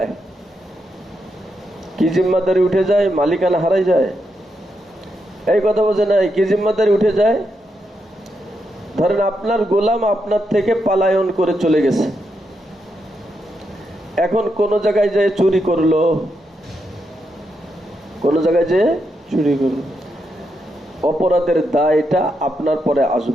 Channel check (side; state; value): both; normal; correlation 0.82